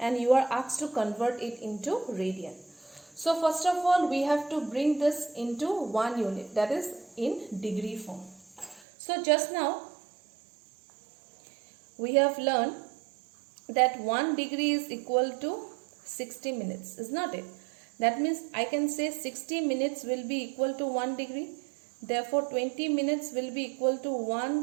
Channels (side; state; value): left; drops out; at 8.8 s